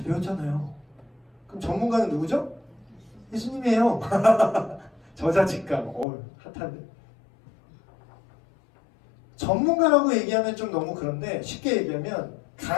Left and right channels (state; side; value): drops out; right; at 6.1 s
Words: 배웠잖아요. 그럼 전문가는 누구죠? 예수님이에요. 저자직감. 핫한데. 전문가라고 얘기하면 좀 너무 그런데 쉽게 얘기하면